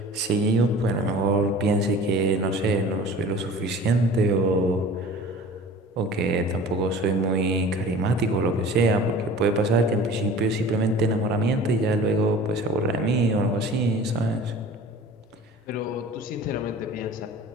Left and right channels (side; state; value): both; normal; correlation 0.42